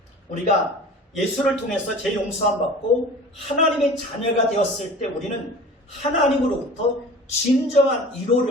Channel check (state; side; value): normal; both; correlation 0.41